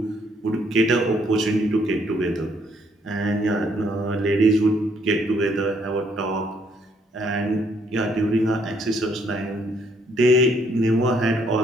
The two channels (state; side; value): normal; both; correlation 0.69